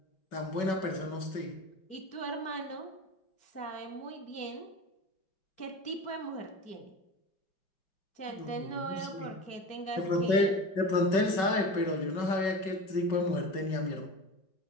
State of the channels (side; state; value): right; late; 5.3 ms